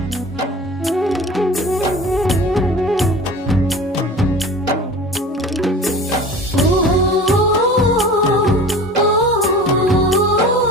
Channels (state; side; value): normal; both; correlation 0.38